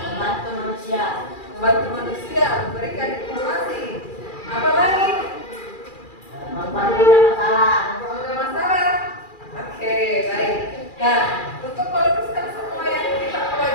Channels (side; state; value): right; late; 2.4 ms